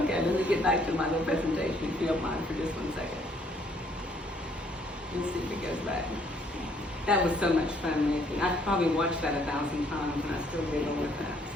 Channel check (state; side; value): normal; both; correlation 0.65